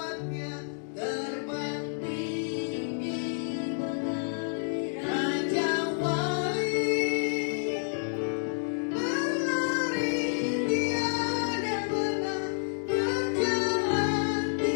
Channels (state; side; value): silent; right; digital silence